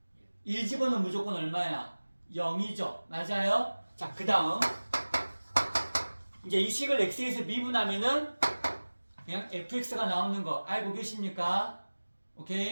1 집어넣으면 무조건 얼마야? 0이죠. 맞아요? 자, 그 다음 이제 이 식을 x에서 미분하면은 그냥 fx가 나오는 거 알고 계십니까?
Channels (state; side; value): inverted; both; correlation -1.00